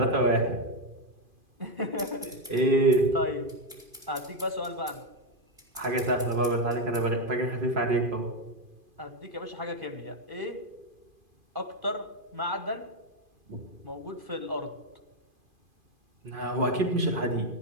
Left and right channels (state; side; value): late; left; 2.5 ms